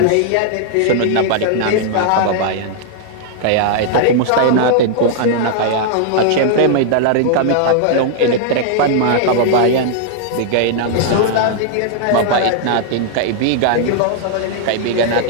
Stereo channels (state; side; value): different; both; correlation -0.01